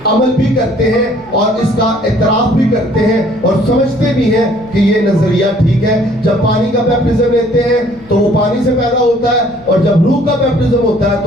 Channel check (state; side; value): noise; left; hum, 28 dB below the sound